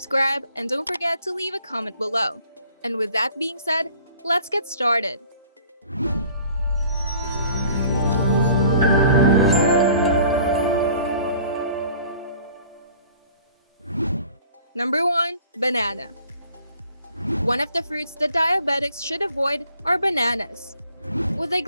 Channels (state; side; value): inverted; both; correlation -0.53